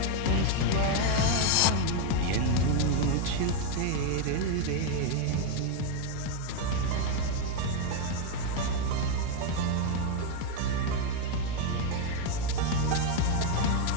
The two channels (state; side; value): different; both; correlation 0.01